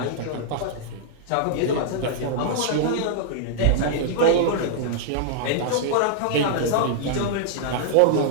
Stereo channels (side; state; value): both; different; correlation -0.01